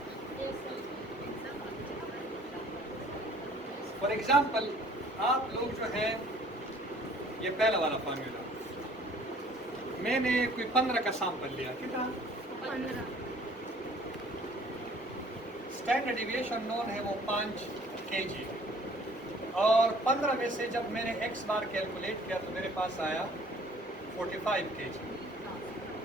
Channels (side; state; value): both; normal; correlation 0.54